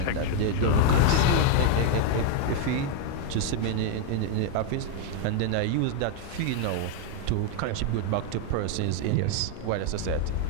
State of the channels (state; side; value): different; both; correlation 0.00